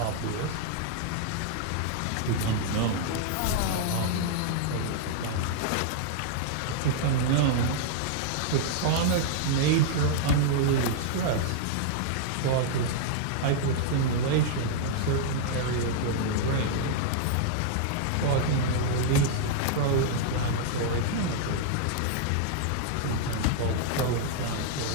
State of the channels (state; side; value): different; both; correlation -0.01